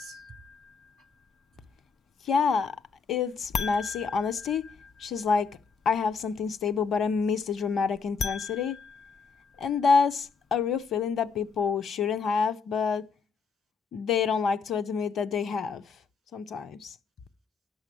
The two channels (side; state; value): right; quieter; 5.4 dB